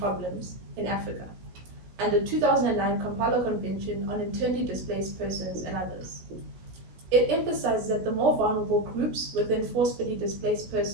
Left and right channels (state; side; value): late; left; 16 ms